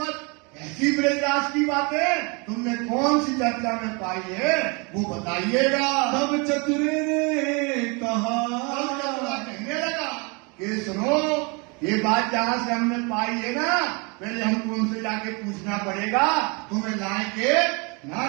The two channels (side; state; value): left; quieter; 30.6 dB